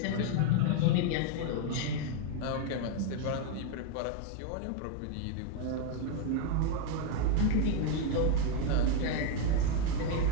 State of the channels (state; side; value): different; both; correlation 0.01